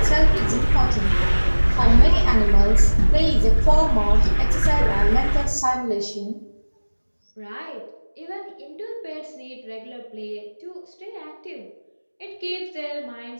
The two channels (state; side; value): inverted; both; correlation -1.00